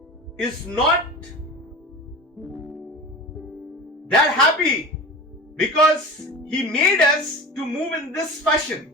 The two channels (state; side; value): normal; both; correlation 0.32